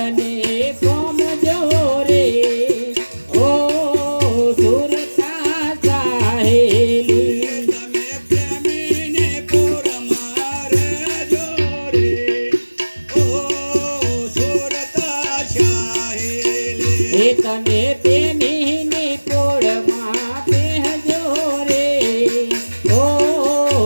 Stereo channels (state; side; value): inverted; both; correlation -1.00